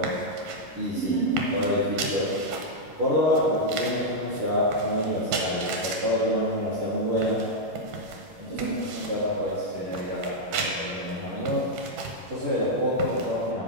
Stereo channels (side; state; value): left; late; 11 ms